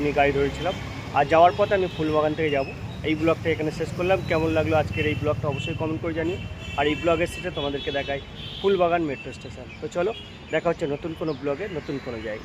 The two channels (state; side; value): identical; both; correlation 1.00